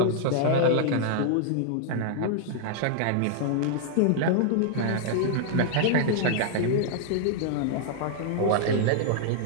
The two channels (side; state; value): both; different; correlation -0.01